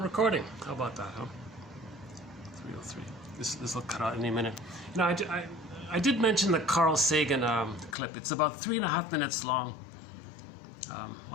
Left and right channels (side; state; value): right; drops out; at 8.0 s